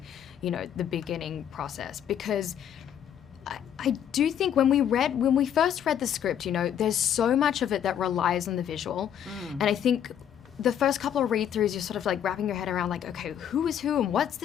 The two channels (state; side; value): quieter; right; 9.4 dB